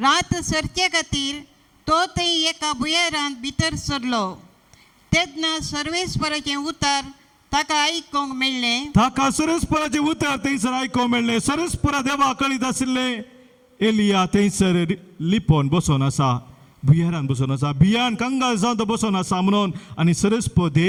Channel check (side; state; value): both; identical; correlation 1.00